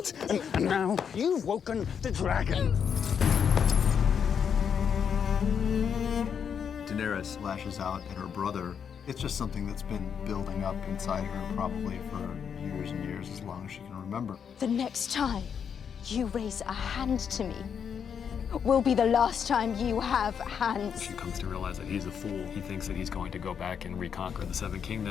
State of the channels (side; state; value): right; quieter; 7.4 dB